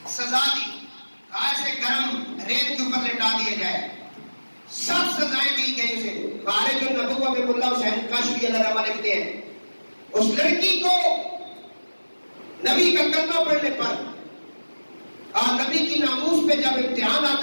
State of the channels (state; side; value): inverted; both; correlation -1.00